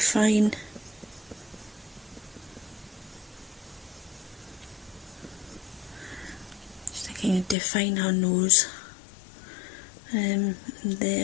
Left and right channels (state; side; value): drops out; right; at 7.6 s